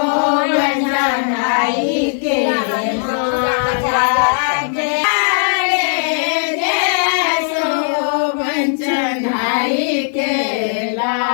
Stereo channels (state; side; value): silent; right; digital silence